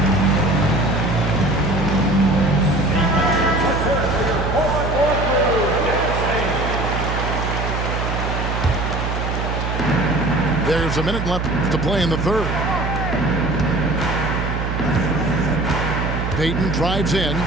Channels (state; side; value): noise; right; hum, 2 dB below the sound